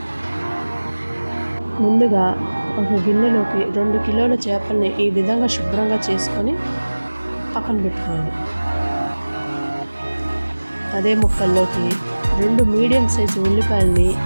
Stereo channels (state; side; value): inverted; both; correlation -1.00